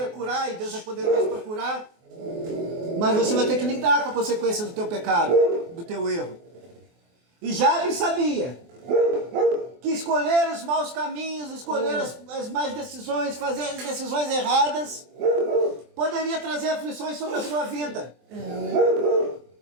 curar, e Deus é poderoso para curar. Mas você vai ter que lidar com a consequência do teu pecado, do teu erro. E Jabes sabia que escolher os maus caminhos, escolher as más decisões, fazer as decisões erradas, poderia trazer aflições sobre a sua vida.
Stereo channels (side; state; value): left; late; 24 ms